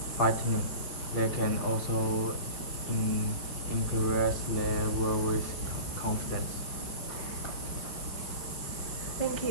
frightening. They can also increase their warriors' confidence. Thank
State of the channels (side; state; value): right; late; 5.8 ms